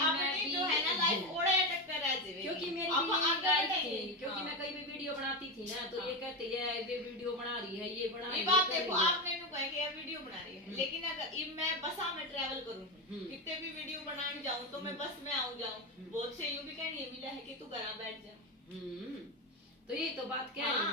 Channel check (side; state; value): both; normal; correlation 0.15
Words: मैं अपनी भी- जो है ना लाइफ ओड़े अटक कर रह जाएगी। क्योंकि मेरी अब भी यही आगे लाइफ बढ़ेंगे। थी, क्योंकि हाँ। मैं कई भी वीडियो बनाती थी ना तो ये कहते है ये वीडियो बना रही है, ये बना रही ये है, बात कर देखो रही है। आपने नु कहा कि ये वीडियो बना रही है, लेकिन अगर इब मैं बसा में ट्रैवल करूं कितने भी वीडियो बनाने जाऊं तो मैं बस में आऊं जाऊं, बहुत से यूं भी कहनी है मिला है कि तू घर बैठ जा। तो ये तो बात कह रही